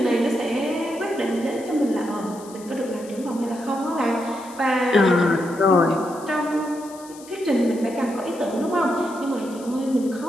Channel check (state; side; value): noise; left; hiss, 20 dB below the sound